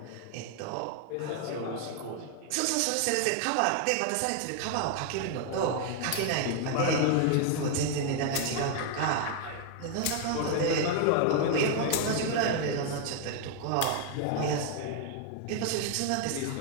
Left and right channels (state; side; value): different; both; correlation 0.00